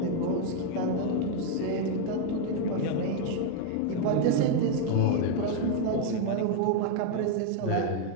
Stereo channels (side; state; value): both; different; correlation 0.01